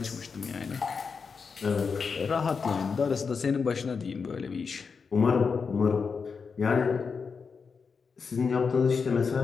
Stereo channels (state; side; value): quieter; right; 5.4 dB